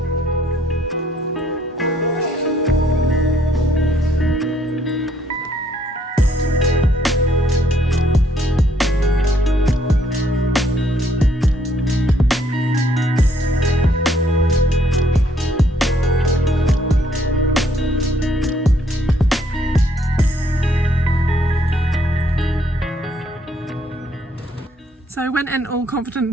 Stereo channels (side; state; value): both; normal; correlation 0.67